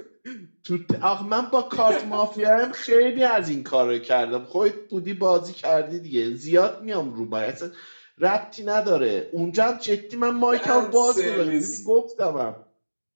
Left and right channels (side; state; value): both; inverted; correlation -1.00